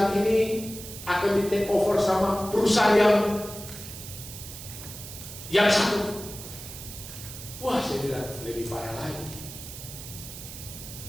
ini akan di take over sama perusahaan yang satu. Wah, saya bilang lebih parah lagi.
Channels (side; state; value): right; noise; hiss, 12 dB below the sound